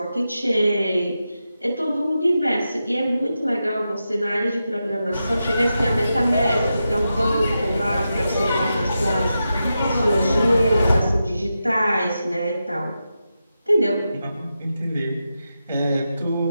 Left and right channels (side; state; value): both; inverted; correlation -0.89